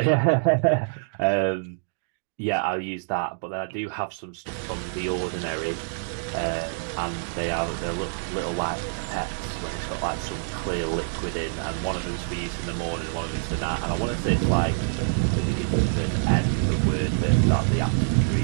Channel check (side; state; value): left; silent; digital silence